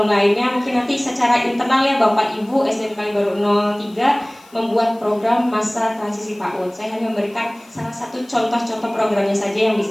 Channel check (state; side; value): noise; left; hiss, 27 dB below the sound